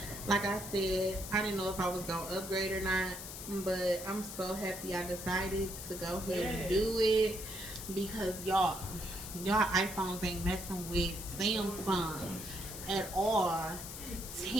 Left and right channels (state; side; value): noise; left; hiss, 9 dB below the sound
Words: Like I said, I didn't know if I was gonna upgrade or not, but I'm so happy I decided to go ahead and do it, because y'all iPhones ain't messing with Samsung at all.